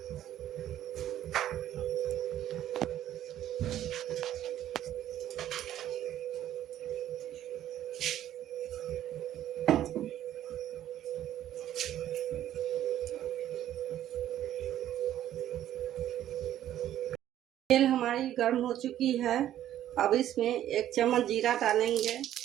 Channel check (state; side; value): quieter; left; 12.0 dB